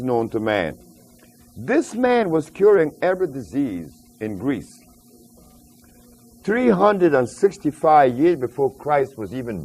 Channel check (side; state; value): both; identical; correlation 1.00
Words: known to man. This man was curing every disease in Greece 365 years before Christ was even